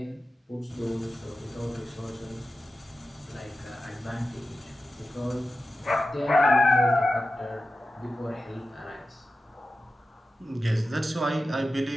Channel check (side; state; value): both; normal; correlation 0.93